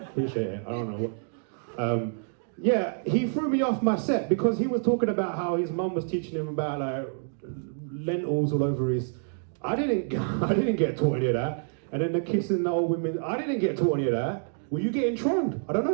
Appreciate it, I don't know what. Yeah, he threw me off my set because he was talking about how his mum was teaching him about like lentils all over his. I didn't get taught any of that. And then the kissing the old women, I didn't get taught any of that. Were you getting trolled? I don't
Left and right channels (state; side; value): silent; left; digital silence